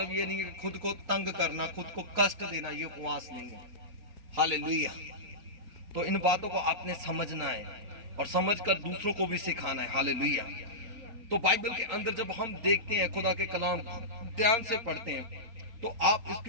ये नहीं है कि खुद को तंग करना, खुद को कष्ट देना, ये उपवास नहीं है। हालेलुया। तो इन बातों को आपने समझना है और समझकर दूसरों को भी सिखाना है। हालेलुया। तो बाइबल के अंदर जब हम देखते हैं, खुदा के कलाम ध्यान से पढ़ते हैं, तो आप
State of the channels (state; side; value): late; left; 4.3 ms